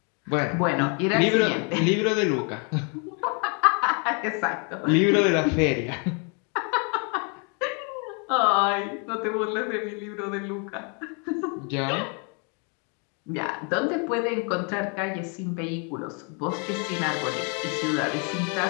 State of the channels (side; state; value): right; quieter; 36.7 dB